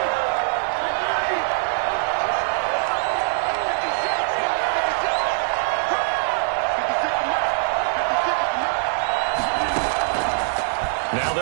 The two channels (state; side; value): silent; left; digital silence